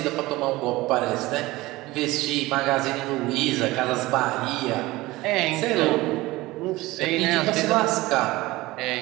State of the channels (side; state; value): left; quieter; 19.4 dB